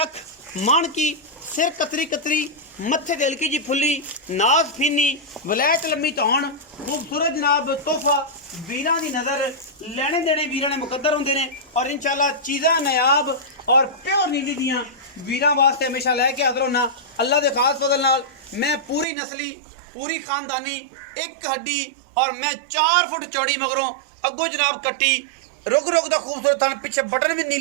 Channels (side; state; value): left; drops out; at 19.1 s